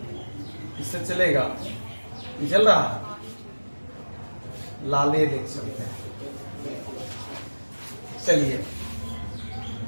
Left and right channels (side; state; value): both; inverted; correlation -1.00